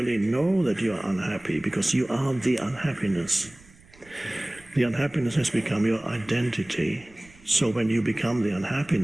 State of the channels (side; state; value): right; noise; rumble, 25 dB below the sound